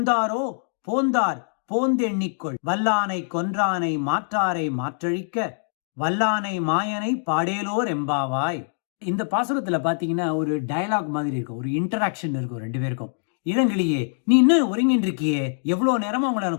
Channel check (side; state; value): right; silent; digital silence